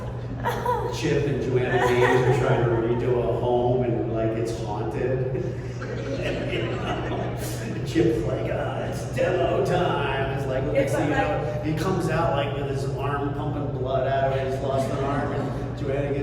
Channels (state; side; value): identical; both; correlation 1.00